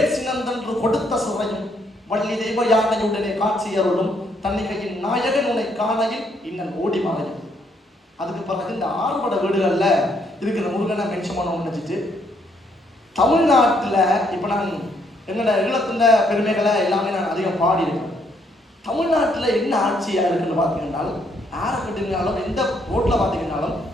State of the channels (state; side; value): normal; both; correlation 0.71